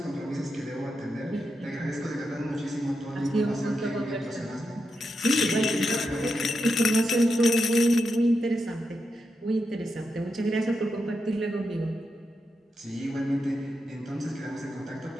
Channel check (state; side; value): normal; both; correlation 0.86